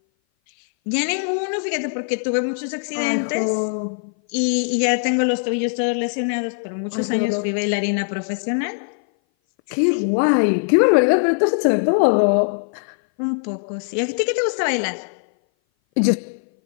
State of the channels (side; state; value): right; silent; 59 dB below the other